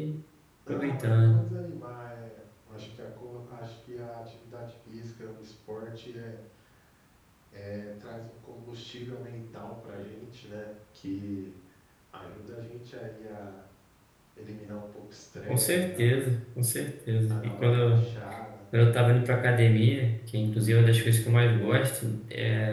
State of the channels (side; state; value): both; identical; correlation 1.00